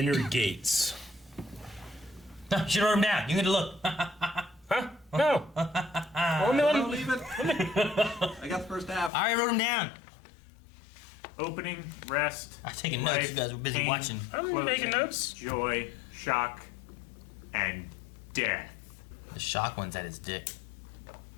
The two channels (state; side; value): drops out; right; at 9.1 s